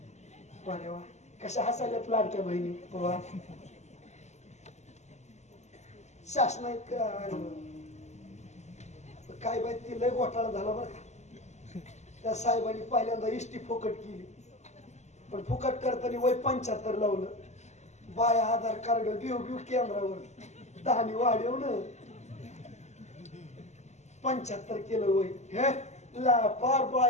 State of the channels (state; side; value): late; right; 0.33 ms